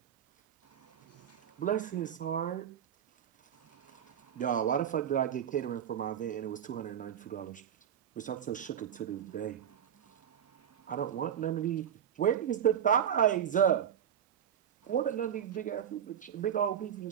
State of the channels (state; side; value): quieter; left; 9.3 dB